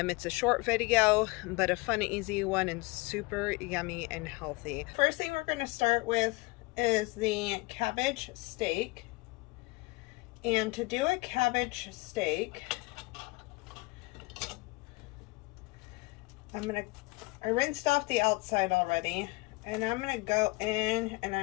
a short video, but a fun, easy one and super yummy and healthy. First thing we're going to start with is the cabbage steak. And to do a cabbage steak, I rinsed off the outside already, and I'm going to go in and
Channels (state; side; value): quieter; right; 24.4 dB